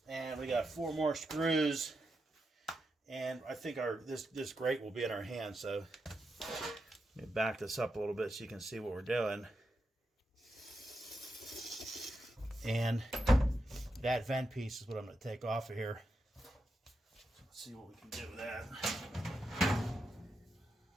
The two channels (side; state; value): both; normal; correlation 0.86